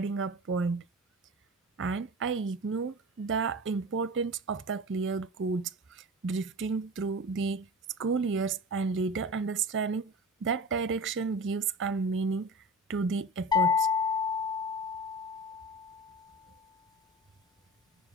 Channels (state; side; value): normal; both; correlation 0.33